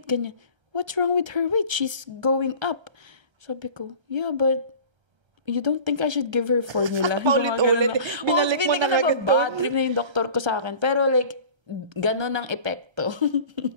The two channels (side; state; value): left; late; 1.3 ms